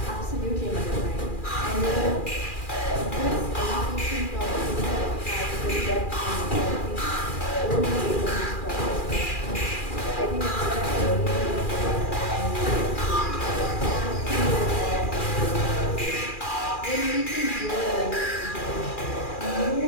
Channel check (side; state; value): right; late; 2.4 ms